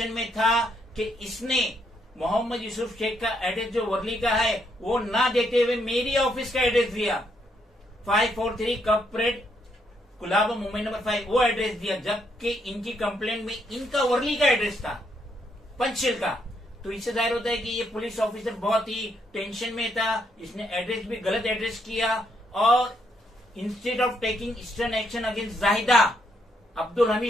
में था कि इसने मोहम्मद यूसुफ शेख का एड्रेस जो वर्ली का है वो ना देते हुए मेरी ऑफिस का एड्रेस दिया, 543 कॉर्पोरेट कुलाबा मुंबई नंबर 5, वो एड्रेस दिया, जबकि इनकी कंप्लेंट में इनका वर्ली का एड्रेस था, पंचशील का। तो इससे जाहिर होता है कि ये पुलिस ऑफिसर बहुत ही टेंशन में था, इसने एड्रेस भी गलत एड्रेस किया। और instead of taking stern action against Zahida Abdul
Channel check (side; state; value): both; normal; correlation 0.75